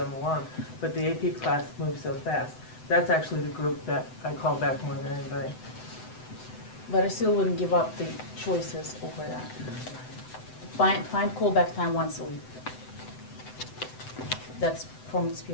along. But the AP class moves so fast. That's actually the group that I call back more than anybody. But I still wouldn't give up the choices over that. Find callback time once a week. That's from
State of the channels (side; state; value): right; late; 7.9 ms